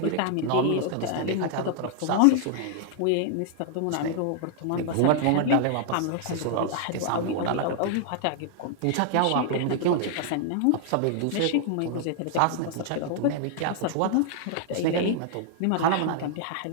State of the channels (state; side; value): different; both; correlation 0.00